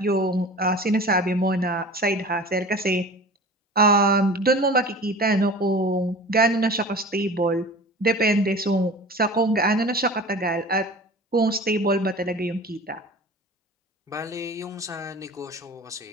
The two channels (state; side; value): normal; both; correlation 0.39